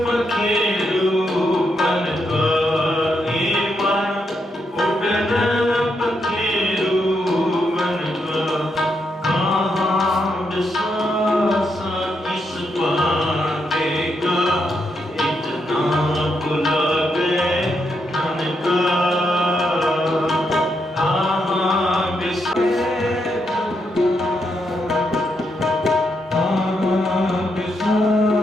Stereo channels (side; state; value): both; normal; correlation 0.80